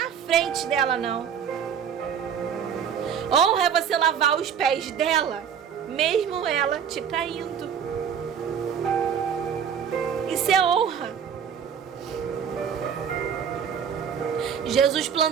frente dela, não. Honra é você lavar os pés dela, mesmo ela te traindo. Isso é honra. Jesus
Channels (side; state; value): left; quieter; 7.9 dB